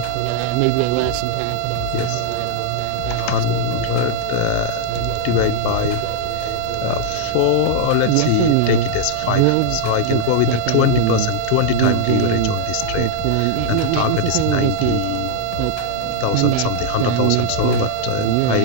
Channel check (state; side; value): different; both; correlation -0.01